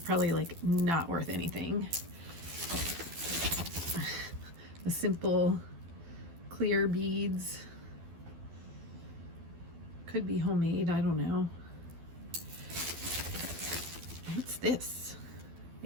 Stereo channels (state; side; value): late; left; 12 ms